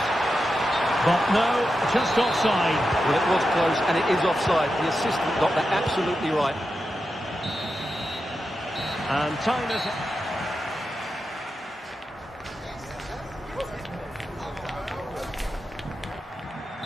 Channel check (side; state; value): both; normal; correlation 0.89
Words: But no, just offside. Well, it was close, and it is offside. The assistant got that absolutely right. And time is...